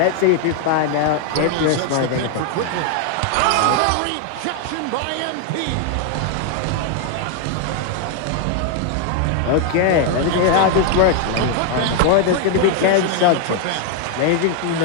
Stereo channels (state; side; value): different; both; correlation 0.00